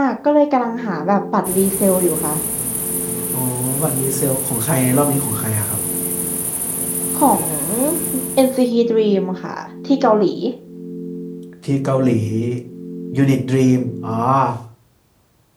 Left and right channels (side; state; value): both; identical; correlation 1.00